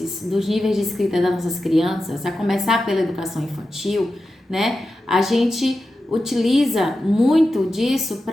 dos níveis de escrita das nossas crianças, a começar pela educação infantil, né? A gente utiliza muito disso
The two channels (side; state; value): both; normal; correlation 0.91